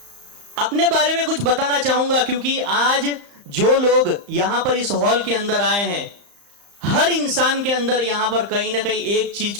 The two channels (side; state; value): left; late; 35 ms